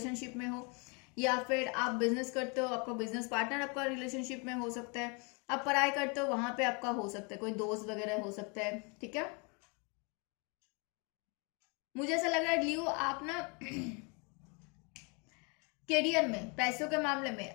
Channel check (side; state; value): right; quieter; 33.1 dB